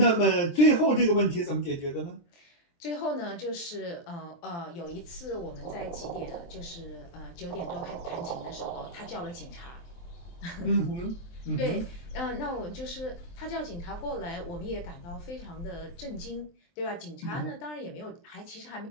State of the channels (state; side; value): late; right; 23 ms